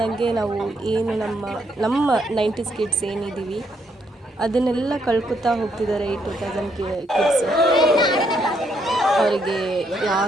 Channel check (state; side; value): normal; both; correlation 0.74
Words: ನಾವು ಏನು ನಮ್ಮ 90s ಕಿಡ್ಸ್ ಏನಿದ್ದೀವಿ ಅದನ್ನೆಲ್ಲ ಕಳ್ಕೊತಾ ಹೋಗ್ತಿದ್ದಾರೆ. ಈ 2000 ಕಿಡ್ಸ್ ಅವರಿಗೆ